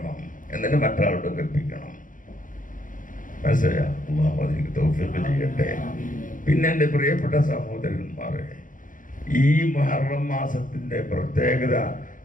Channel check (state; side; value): late; right; 0.39 ms